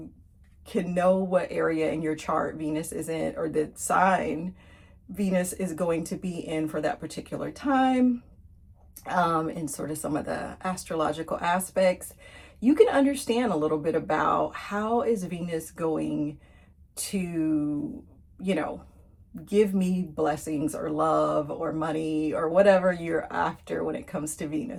can know what area in your chart Venus is in, or the sign Venus is going to be in for that particular time, and sort of some of the astrological aspects, you can understand a little bit about how is Venus going to, give me blessings or love or money or whatever you're after when it comes to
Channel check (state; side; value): identical; both; correlation 1.00